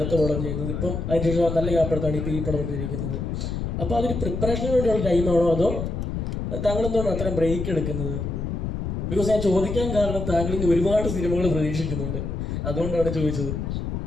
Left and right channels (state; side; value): noise; left; rumble, 3 dB below the sound